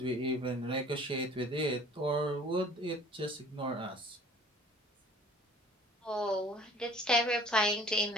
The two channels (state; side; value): normal; both; correlation 0.50